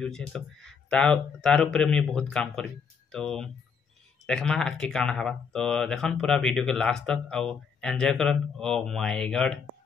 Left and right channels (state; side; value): quieter; right; 6.1 dB